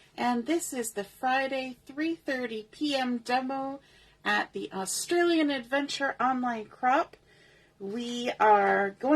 and this is the Friday 3:30 p.m. demo at the Australian Adventure Online Crop. We are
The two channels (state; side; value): identical; both; correlation 1.00